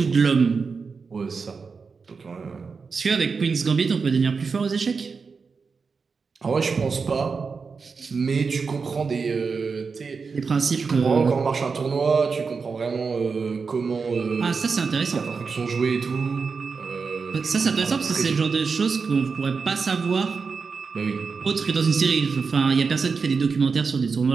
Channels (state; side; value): quieter; left; 5.0 dB